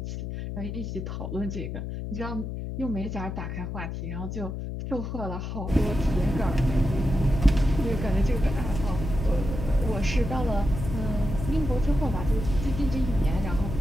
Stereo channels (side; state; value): left; noise; hum, 5 dB below the sound